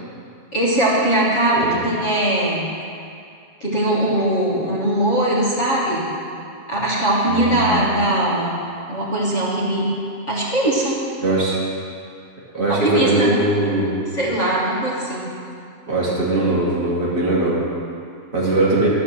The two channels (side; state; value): right; late; 7.1 ms